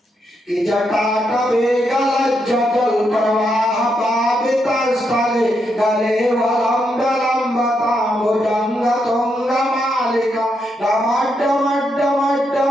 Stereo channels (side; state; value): both; normal; correlation 0.80